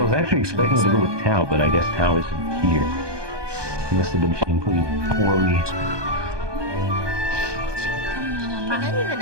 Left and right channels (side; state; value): left; late; 1.2 ms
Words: was actually expecting to go with Tao, but I guess Tao isn't here. He must have been pretty poorly. They're not even